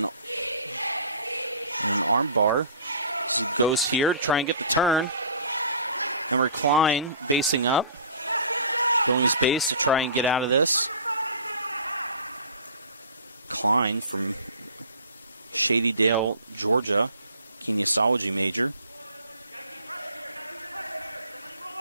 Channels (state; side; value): inverted; both; correlation -0.44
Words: an arm bar. As he goes here, trying to get the turn. Emery Klein basing up, building his base to try and get out of this. Klein from Shadydale, Georgia, kinesiology major.